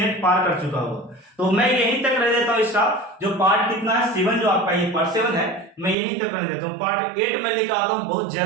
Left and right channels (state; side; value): drops out; left; at 6.0 s